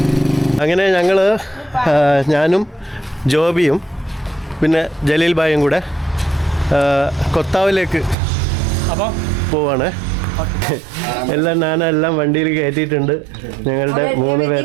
അങ്ങനെ ഞാനും ജോബിയും പിന്നെ ജലീൽ ഭായും കൂടെ കൊത്താവിലേക്ക് പോവാണ്. എല്ലാം വണ്ടിയിൽ കയറ്റിയിട്ടുണ്ട്. ഞങ്ങളുടെ 3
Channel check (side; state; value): left; drops out; at 8.2 s